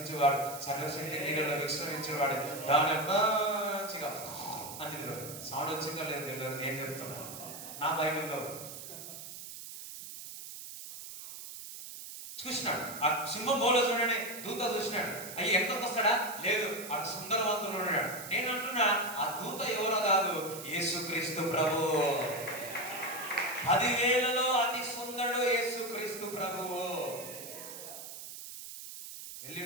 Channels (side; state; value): right; noise; hiss, 11 dB below the sound